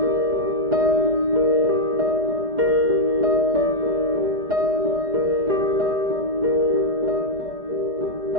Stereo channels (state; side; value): late; left; 4.9 ms